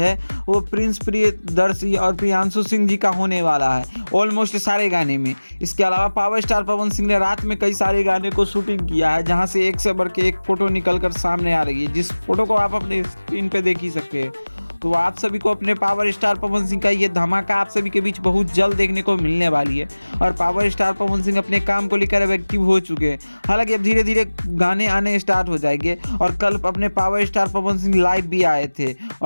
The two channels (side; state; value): both; inverted; correlation -1.00